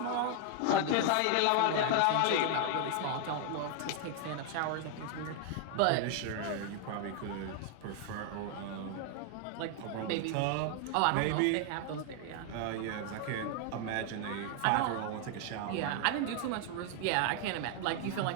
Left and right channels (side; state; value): both; different; correlation 0.00